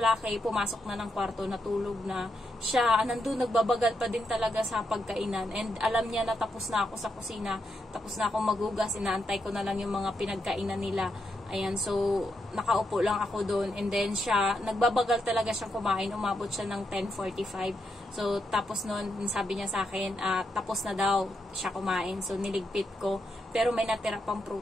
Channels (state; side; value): normal; both; correlation 0.82